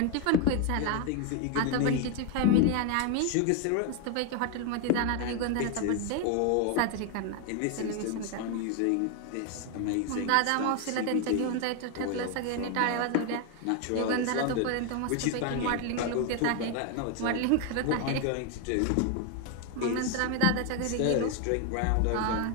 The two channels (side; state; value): both; different; correlation 0.01